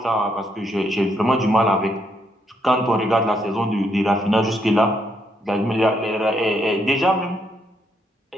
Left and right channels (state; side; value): normal; both; correlation 0.75